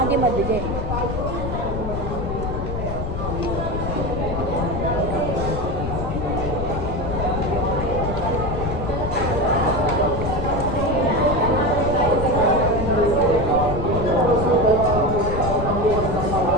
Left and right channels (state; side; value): noise; left; rumble, 5 dB below the sound